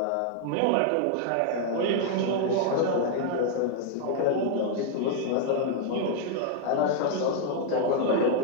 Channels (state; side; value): different; both; correlation 0.00